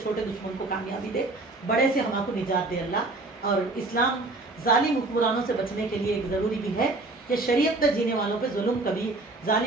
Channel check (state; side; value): quieter; left; 3.1 dB